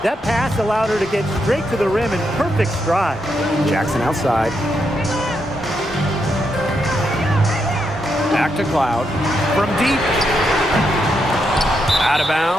That pass allowed her to get straight to the rim in perfect stride. Jackson outside. Back to Cloud. From deep. Out of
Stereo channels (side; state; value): both; normal; correlation 0.81